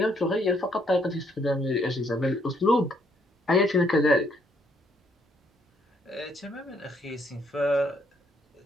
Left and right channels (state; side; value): normal; both; correlation 0.70